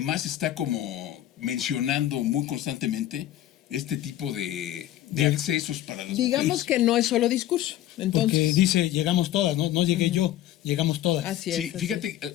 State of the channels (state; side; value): quieter; right; 13.1 dB